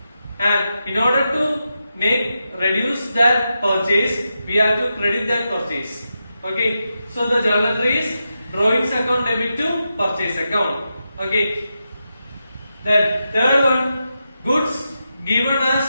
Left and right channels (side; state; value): both; inverted; correlation -0.88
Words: And in order to reduce that purchase, we have to credit that purchase. Okay, so the journal entry is drawings account debit to purchase account. Okay, then third one, goods given